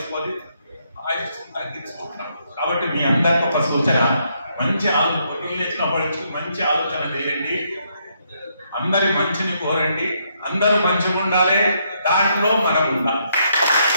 ఆయుష్యం తగ్గించుకుంటున్నాం. కాబట్టి మీ అందరికీ ఒక సూచన, మంచి మంచి ఆలోచన చేయండి, అందరి మంచిని కోరండి, అందరూ మంచిగా ఉండాలి, దాంట్లో మనం ఉండాలి.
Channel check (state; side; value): inverted; both; correlation -0.75